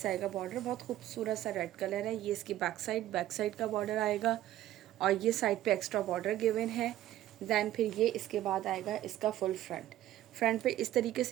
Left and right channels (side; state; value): left; quieter; 13.6 dB